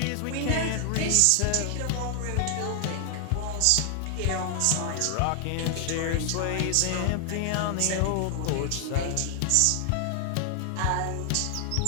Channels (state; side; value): different; both; correlation 0.00